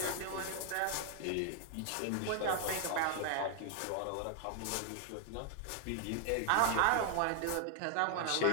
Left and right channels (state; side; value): different; both; correlation 0.00